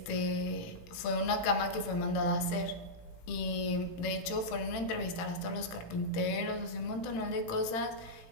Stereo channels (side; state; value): right; late; 18 ms